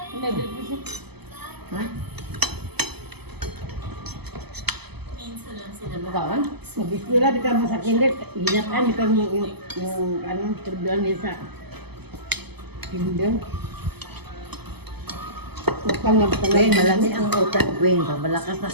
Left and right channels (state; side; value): late; left; 0.97 ms